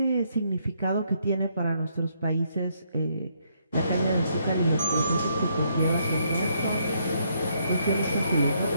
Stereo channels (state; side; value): inverted; both; correlation -0.73